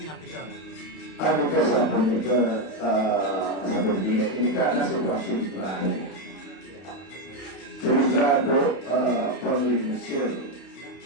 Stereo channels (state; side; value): late; right; 32 ms